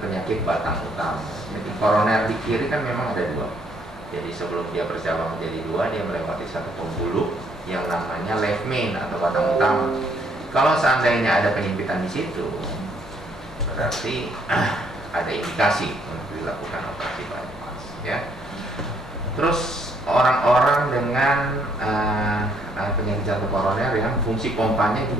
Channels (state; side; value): normal; both; correlation 0.68